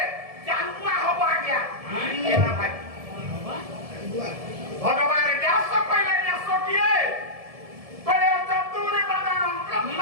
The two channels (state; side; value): late; left; 1.7 ms